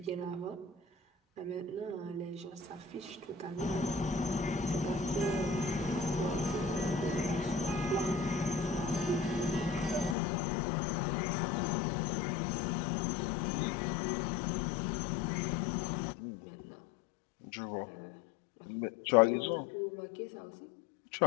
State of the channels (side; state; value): right; drops out; at 10.2 s